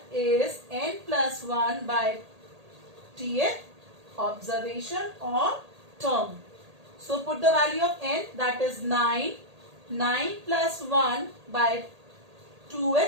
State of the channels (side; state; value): left; late; 1.8 ms